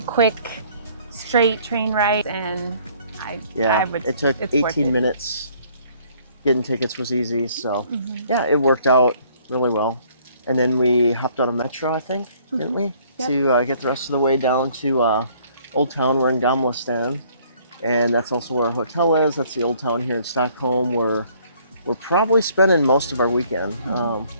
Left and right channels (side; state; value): both; inverted; correlation -0.61